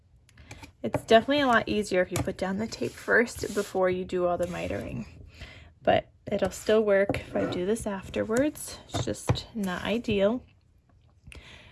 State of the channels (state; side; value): identical; both; correlation 1.00